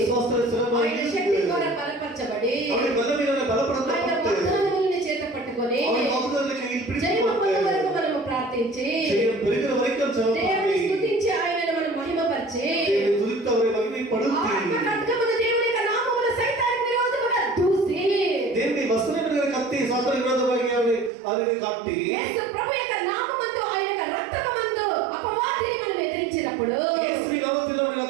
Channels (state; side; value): drops out; left; at 21.1 s